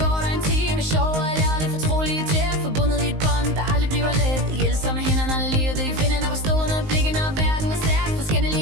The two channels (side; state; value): left; late; 19 ms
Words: går der en time. Sjov og ærligt, fortrolige tæt. Forbundet i et bånd, der aldrig bliver let. Hjælper med hænderne, livet i finden. Og stående blikken, og verden er stærk.